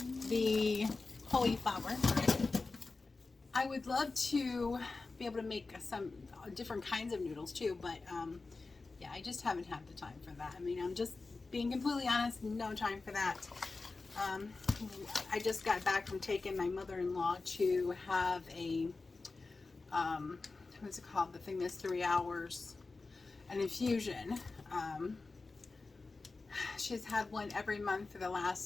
the cauliflower. I would love to be able to make some different kinds of noodles too, but yeah, I just haven't had the time for that. I mean, I'm just being completely honest, no time for that. I just got back from taking my mother-in-law to have a what's it called, the thing that's 3 hours, an infusion. She's had one every month for the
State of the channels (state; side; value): quieter; right; 3.8 dB